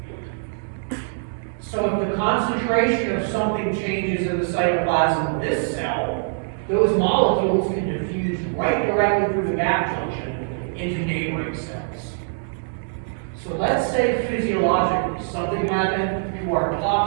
So if the concentration of something changes in the cytoplasm of this cell, those molecules can diffuse right directly through the gap junction into neighboring cells. So let's say physiologically something happened to our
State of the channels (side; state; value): left; silent; digital silence